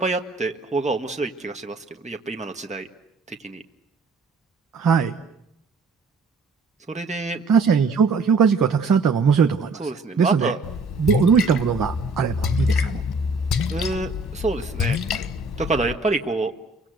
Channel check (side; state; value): left; quieter; 3.5 dB